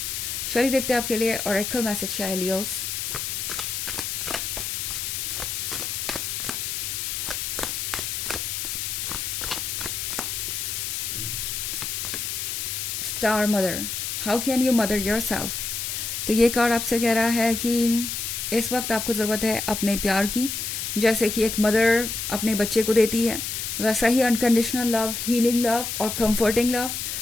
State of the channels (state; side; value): noise; left; hiss, 3 dB below the sound